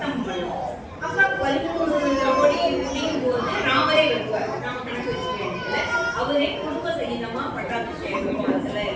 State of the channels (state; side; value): identical; both; correlation 1.00